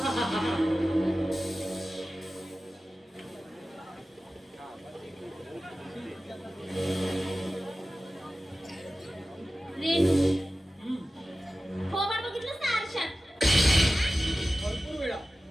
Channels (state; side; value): normal; both; correlation 0.95